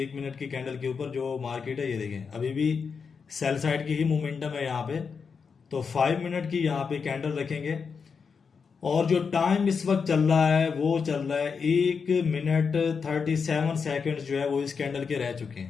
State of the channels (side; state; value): right; quieter; 5.7 dB